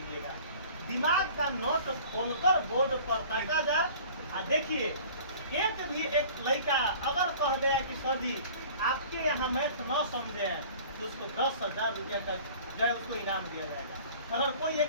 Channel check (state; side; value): inverted; both; correlation -0.46